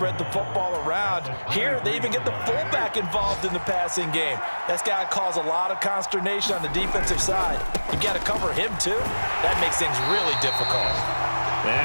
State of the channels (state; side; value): inverted; both; correlation -1.00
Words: the football around. Here, they even get the fullback involved in the passing game. That's got to cause a lot of consternation on the defensive side. You got to cover him, too. That makes things really difficult.